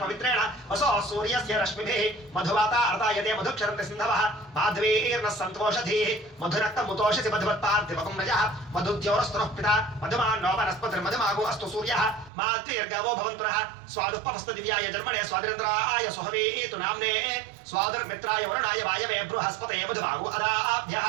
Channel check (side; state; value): left; drops out; at 12.3 s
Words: పవిత్రేణ వసో సూర్యస్య రశ్మిభిః మధువాతా అర్తాయతే మధుక్షరంతి సింధవః మాధ్వీర్న సంతోషధీః మధురక్త ముతోషసి మధువత్పార్థివకం రజః మధుద్యోరస్తునః పితా మధుమాన్నో వనస్పతిర్మధుమాగో అస్తు సూర్యః మాత్వీర్గవో భవంతునః స్వాదుపమస్తు దివ్యాయ జన్మనే స్వాదిరేంద్రాయ సుహవీతు నామ్నే స్వాదుర్మిత్రాయ వరుణాయ వాయవే బృహస్పతయే మధుమాగో అదాభ్యః